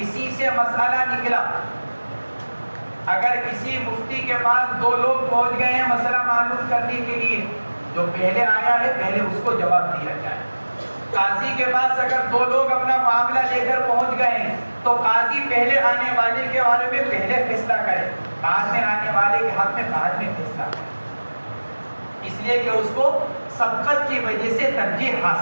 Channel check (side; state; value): both; inverted; correlation -1.00